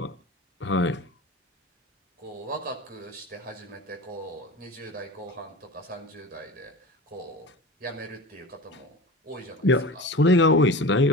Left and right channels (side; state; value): both; normal; correlation 0.33